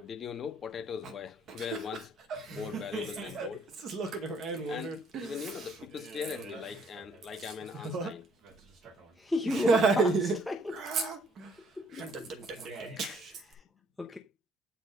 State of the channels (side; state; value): both; normal; correlation 0.65